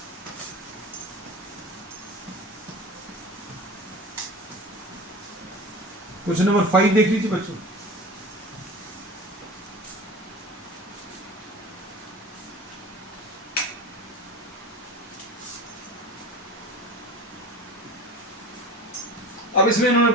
क्वेश्चन नंबर 5 देख लीजिए बच्चों। अब इसमें इन्होंने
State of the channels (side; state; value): both; normal; correlation 0.35